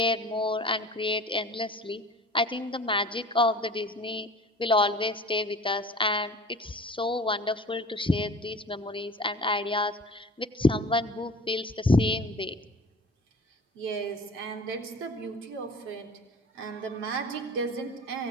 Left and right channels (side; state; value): both; normal; correlation 0.41